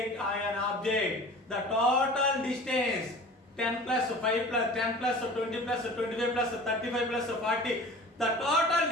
or an object. The total distance 10 plus 5 plus 10 plus 20 plus 25 plus 35 plus 40. The total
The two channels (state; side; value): normal; both; correlation 0.41